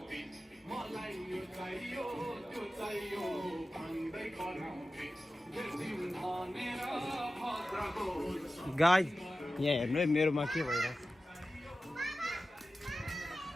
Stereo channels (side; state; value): both; normal; correlation 0.94